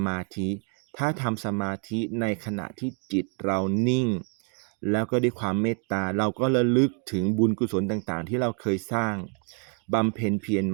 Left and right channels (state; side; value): quieter; left; 39.6 dB